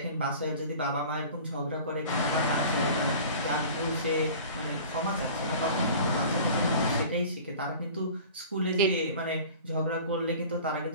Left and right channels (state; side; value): inverted; both; correlation -0.42